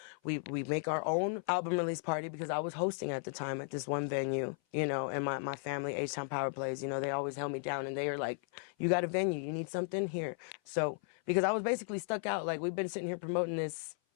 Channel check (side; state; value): right; silent; 54 dB below the other